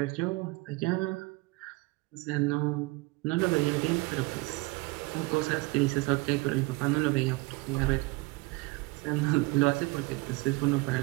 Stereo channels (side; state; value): left; quieter; 24.0 dB